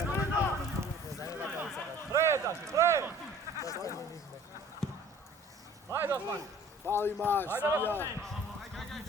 Pre! Hajde, Osman! Fali maš, ja.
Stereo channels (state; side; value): normal; both; correlation 0.51